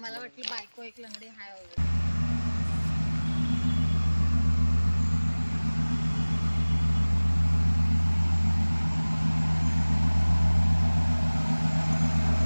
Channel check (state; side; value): inverted; both; correlation -1.00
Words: वाटलं बायको एक लंगडी हाय वगैरे.